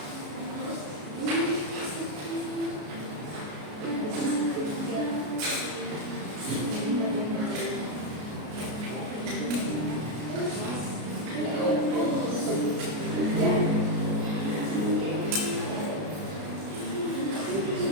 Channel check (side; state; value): left; late; 33 ms